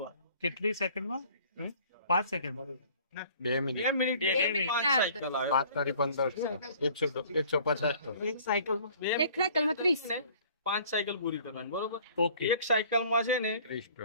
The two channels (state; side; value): inverted; both; correlation -0.53